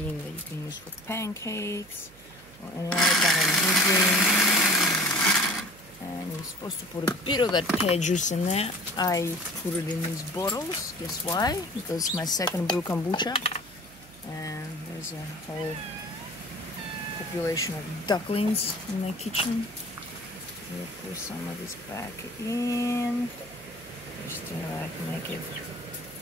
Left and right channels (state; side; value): noise; right; hum, 25 dB below the sound